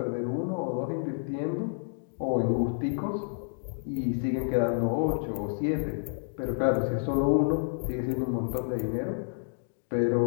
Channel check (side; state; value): right; silent; digital silence